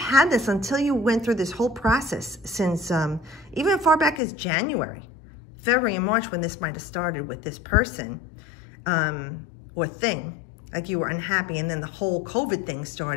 had this until you went through this whole process since even as far back as January, February, and March, when this might have started with this person or thing, like you were unhappy, and then the whole COVID thing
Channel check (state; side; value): drops out; right; at 4.2 s